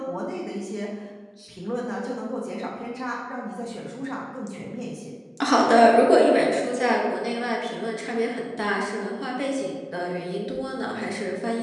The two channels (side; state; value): both; identical; correlation 1.00